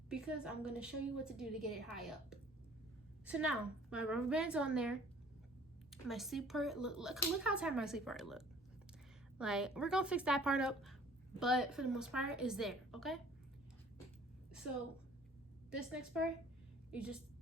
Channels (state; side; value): noise; right; rumble, 30 dB below the sound